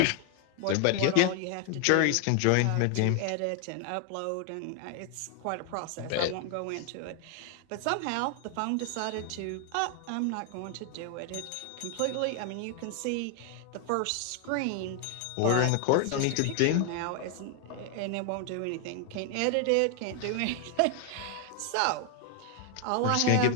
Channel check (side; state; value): both; different; correlation 0.00